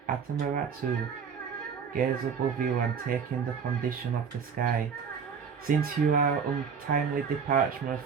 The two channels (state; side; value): quieter; left; 6.4 dB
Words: Atamaratu, gaze above you and take in the condition of the sky. Since you are untimely departure